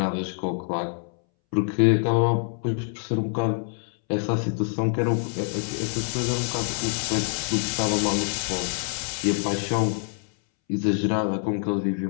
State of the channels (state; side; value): silent; right; 61 dB below the other